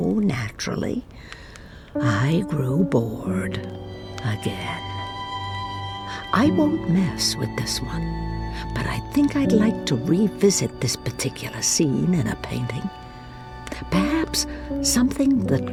naturally, I grew bored again. I won't mess with this one, but I think I'd like to revisit this particular scene in a painting. Perhaps something that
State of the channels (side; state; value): both; identical; correlation 1.00